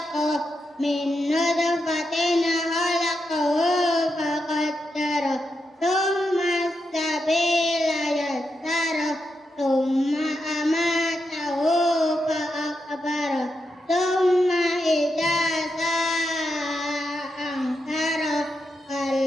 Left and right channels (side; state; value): both; normal; correlation 0.85